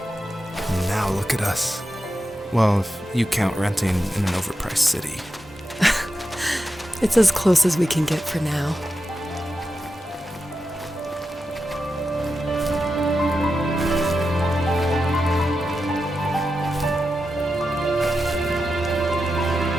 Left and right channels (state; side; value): normal; both; correlation 0.89